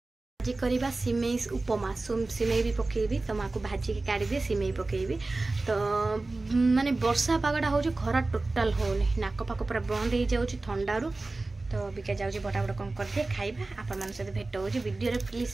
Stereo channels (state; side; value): quieter; left; 3.2 dB